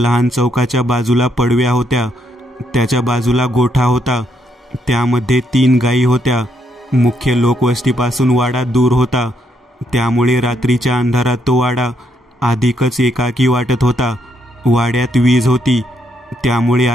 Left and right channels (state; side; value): normal; both; correlation 0.75